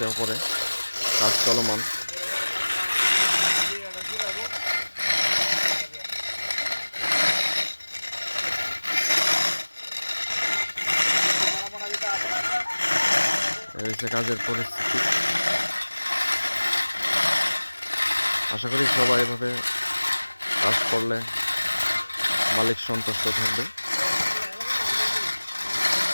ওপরে কাজ চলমান। এই হচ্ছে কাজের পরিস্থিতি। আশা করি সবাই এভাবে কাজ করলে মালিক সন্তুষ্ট থাকবে।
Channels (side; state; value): both; inverted; correlation -1.00